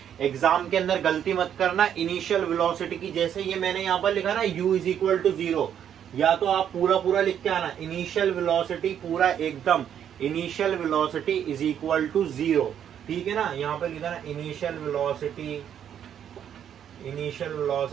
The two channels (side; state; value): left; quieter; 9.3 dB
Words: एग्जाम के अंदर गलती मत करना, इनिशियल वेलोसिटी की जैसे ये मैंने यहाँ पर लिखा ना u इज इक्वल टू 0, या तो आप पूरा लिख के आना, इनिशियल वेलोसिटी पूरा एकदम, initial velocity is equal to 0, ठीक है ना। यहाँ पर लिखा ना initial velocity